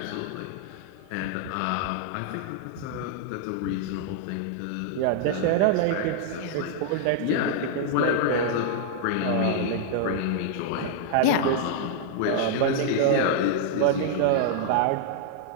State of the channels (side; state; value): both; different; correlation 0.00